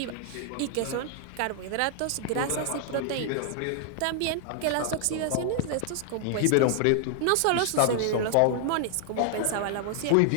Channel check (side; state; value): both; different; correlation 0.00